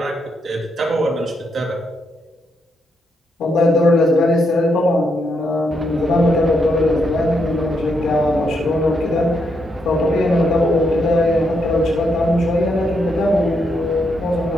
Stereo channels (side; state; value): both; normal; correlation 0.79